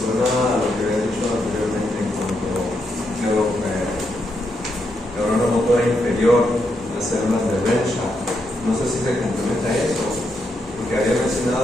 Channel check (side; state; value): both; normal; correlation 0.81